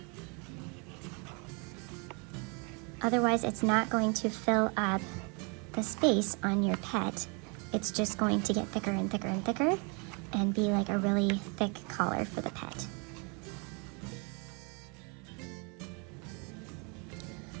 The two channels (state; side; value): quieter; left; 33.5 dB